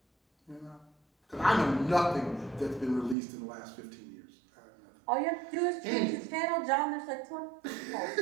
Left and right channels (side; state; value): left; drops out; at 3.2 s